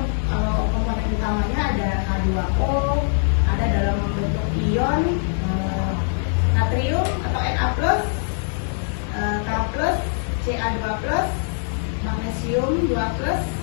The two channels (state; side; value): silent; right; digital silence